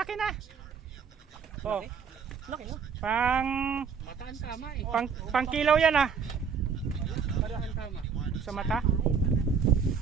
na. Oh, Laki no? pang Mataan tama eh. pang kilaw yan ah. Parahan tama. Sa mata.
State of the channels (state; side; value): quieter; left; 6.3 dB